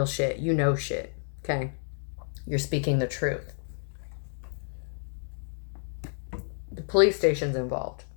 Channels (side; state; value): right; silent; digital silence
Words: shit. You know shit. Okay? You're speaking the truth. The police station's involved.